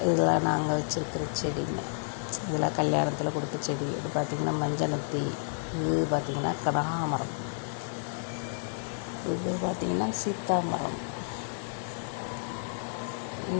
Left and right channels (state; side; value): silent; right; digital silence